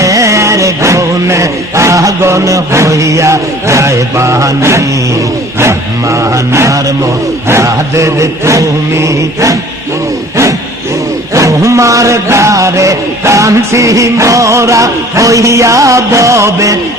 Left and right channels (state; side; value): normal; both; correlation 0.49